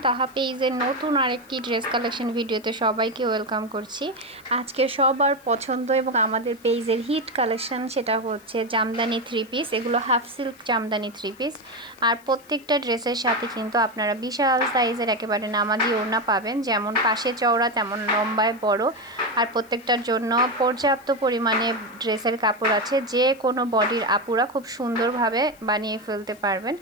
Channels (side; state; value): left; noise; hiss, 27 dB below the sound